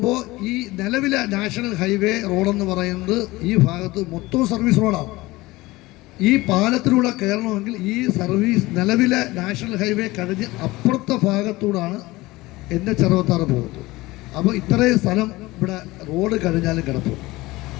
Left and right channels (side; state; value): right; quieter; 20.1 dB